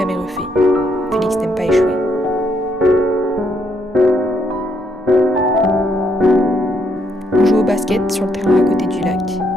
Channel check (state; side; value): normal; both; correlation 0.74